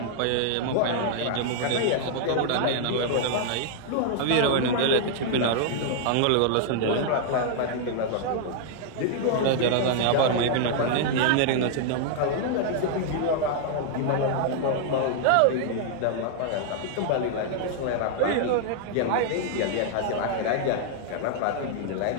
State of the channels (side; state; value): both; different; correlation -0.01